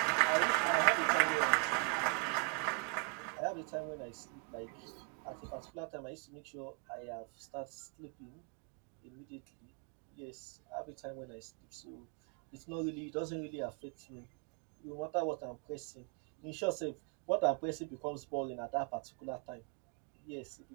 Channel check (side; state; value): left; quieter; 33.3 dB